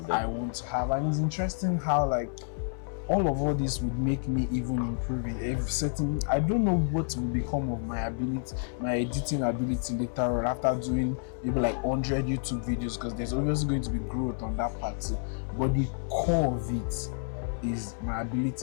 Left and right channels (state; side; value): silent; right; 58 dB below the other